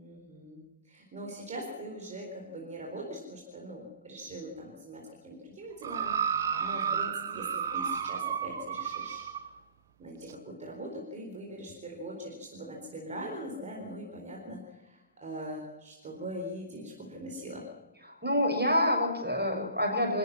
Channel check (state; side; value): inverted; both; correlation -0.48